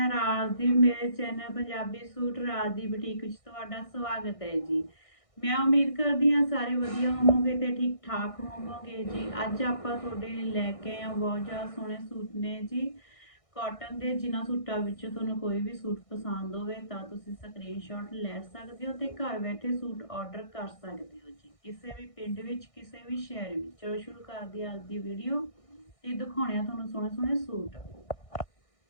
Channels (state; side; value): late; right; 1.6 ms